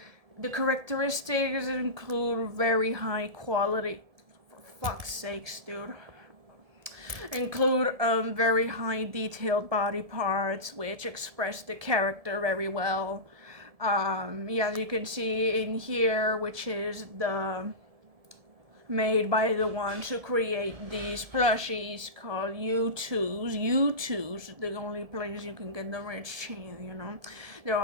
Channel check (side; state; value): left; late; 1.7 ms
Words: The characteristics include very high quality, for fuck's sakes, dude. Include very high detailed body parts which express the character very well. Yeah, as you can see in here, which is the made by the ones who create these plushies called U2s. U2s, the only place you can get the rich cheese, you know. There